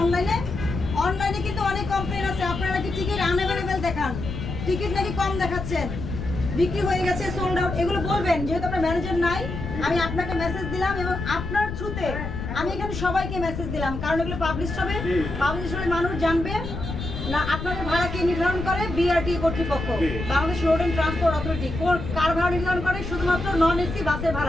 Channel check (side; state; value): left; noise; rumble, 6 dB below the sound